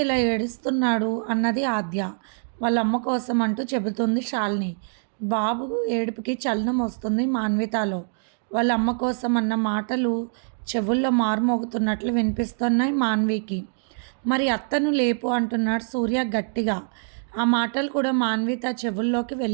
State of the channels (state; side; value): silent; left; digital silence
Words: ఇలా ఏడుస్తున్నాడు అన్నది ఆద్య. వాళ్ళ అమ్మ కోసం అంటూ చెబుతుంది శాలిని. బాబు ఏడుపుకి చలనం వస్తుంది మాన్వితాలో. వాళ్ళ అమ్మ కోసం అన్న మాటలు చెవుల్లో మారుమోగుతున్నట్లు వినిపిస్తున్నాయి మాన్వికి. మరి అత్తను లేపు అంటున్నాడు సూర్య గట్టిగా. ఆ మాటలు కూడా మాన్విత చెవుల్లోకి